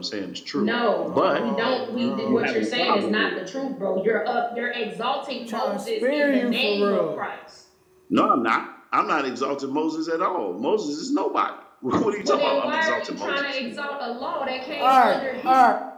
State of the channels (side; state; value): both; identical; correlation 1.00